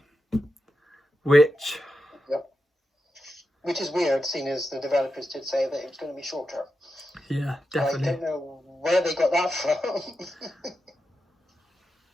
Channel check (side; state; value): both; normal; correlation 0.88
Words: which is weird, seeing as the developers did say that it was going to be shorter. Yeah, definitely. I don't know where they got that from.